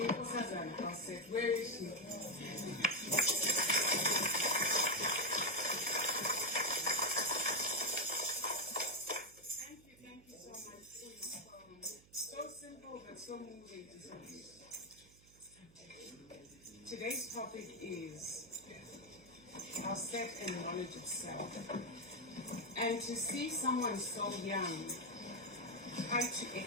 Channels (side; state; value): right; noise; hum, 26 dB below the sound